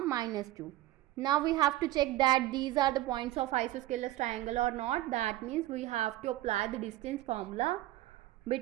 minus 2. Now we have to check that these are the points of isosceles triangle or not. That means we have to apply the distance formula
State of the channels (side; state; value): left; quieter; 15.7 dB